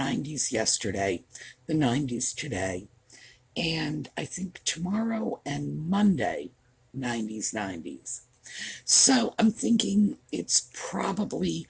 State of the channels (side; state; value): both; identical; correlation 1.00